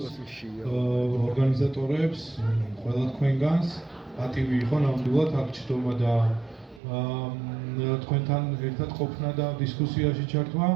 ორგანიზატორებს, ყველა თქვენგანს. პატივი იყო ნამდვილად აქ ჩდომა და თქვენთან ერთად ყოფნა და დისკუსიაში ჩართვა.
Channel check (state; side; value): drops out; left; at 6.8 s